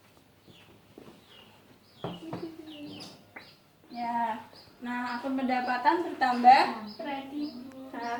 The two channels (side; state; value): both; identical; correlation 1.00